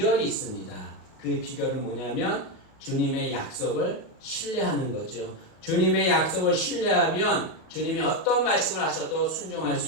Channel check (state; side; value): late; right; 38 ms